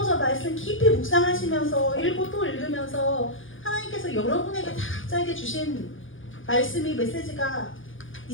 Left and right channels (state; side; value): late; right; 0.58 ms